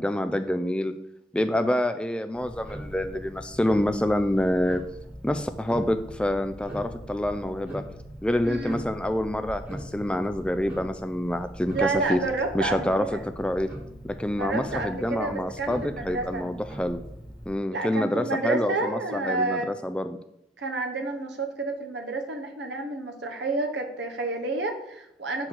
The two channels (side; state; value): both; normal; correlation 0.73